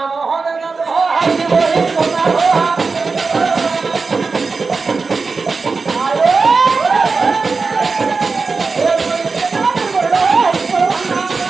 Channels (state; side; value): quieter; left; 4.4 dB